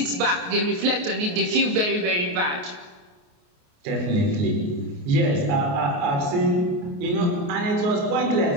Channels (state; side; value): late; left; 28 ms